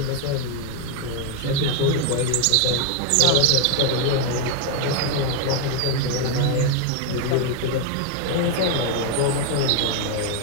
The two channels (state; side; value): different; both; correlation 0.01